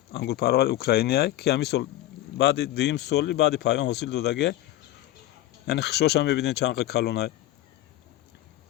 پرور اوکراینی که همین سال بعد دیم سالی بعد پایان حاصل دادگه. یعنی خشوش هم میبینید چند کلونه.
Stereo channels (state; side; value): quieter; right; 14.7 dB